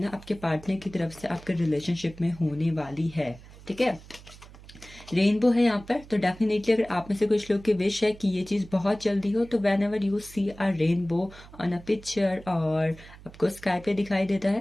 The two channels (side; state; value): right; noise; hum, 20 dB below the sound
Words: ना आपके पार्टनर की तरफ से आपके रिलेशनशिप में होने वाली है। ठीक है, रेनबो है यहाँ पर, तो डेफिनेटली अगर आप में से कुछ लोग की विश है कि ये चीज़ बहुत जल्दी हो, तो whenever you see a rainbow on a picture और आपको स्काई पे दिखाई देता